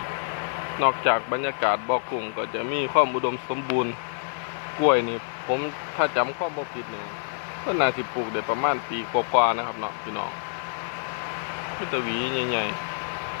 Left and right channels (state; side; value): silent; right; digital silence